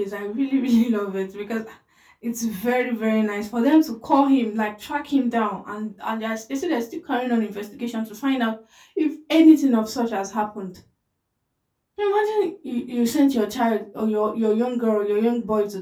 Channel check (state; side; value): identical; both; correlation 1.00